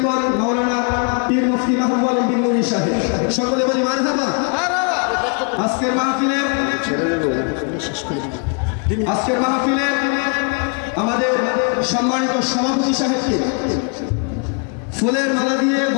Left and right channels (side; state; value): right; quieter; 39.1 dB